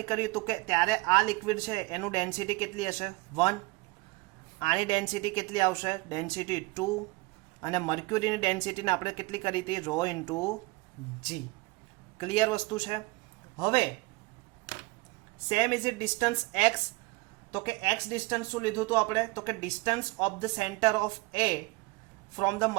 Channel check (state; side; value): quieter; left; 23.8 dB